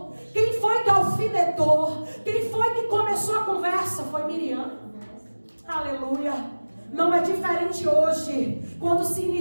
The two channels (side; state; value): both; inverted; correlation -1.00